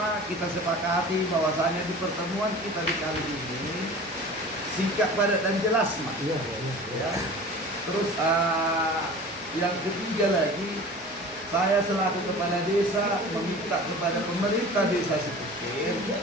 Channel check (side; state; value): both; normal; correlation 0.39